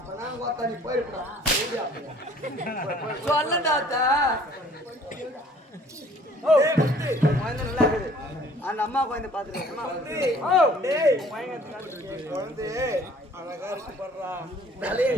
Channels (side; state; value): both; normal; correlation 0.54